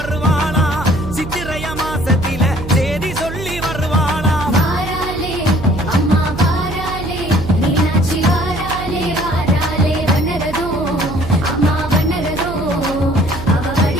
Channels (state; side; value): noise; right; hum, 9 dB below the sound